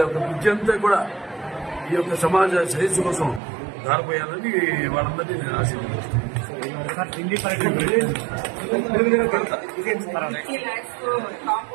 యొక్క విద్య అంతా కూడా ఈ యొక్క సమాజ శ్రేయస్సు కోసం దారిపోయాలని వాళ్ళందరినీ నేను ఆశీర్వదిస్తున్నాను.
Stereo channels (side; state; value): left; drops out; at 3.4 s